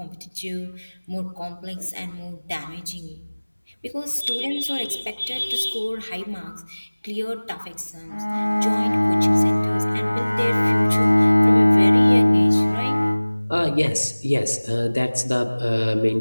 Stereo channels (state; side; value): inverted; both; correlation -1.00